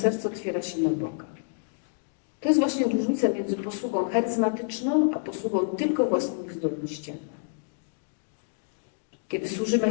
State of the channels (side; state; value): right; silent; digital silence